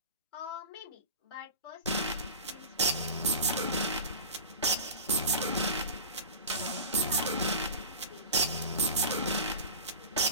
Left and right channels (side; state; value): both; inverted; correlation -0.32